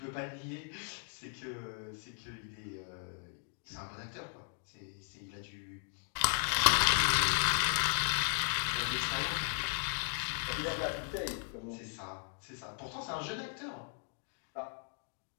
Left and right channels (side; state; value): right; silent; 53 dB below the other